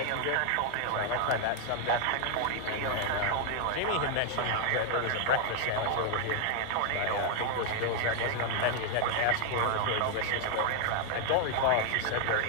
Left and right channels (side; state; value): both; different; correlation 0.00